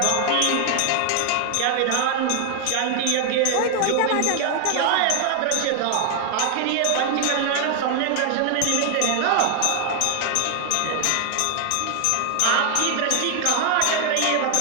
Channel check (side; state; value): both; different; correlation 0.00